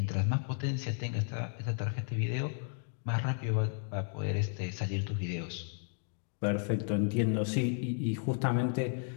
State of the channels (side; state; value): right; silent; 55 dB below the other